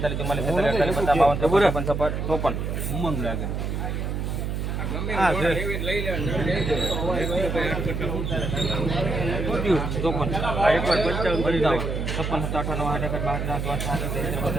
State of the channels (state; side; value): noise; right; hum, 2 dB below the sound